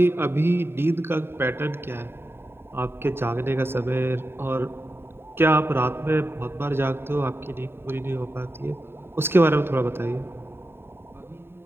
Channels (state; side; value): late; left; 0.11 ms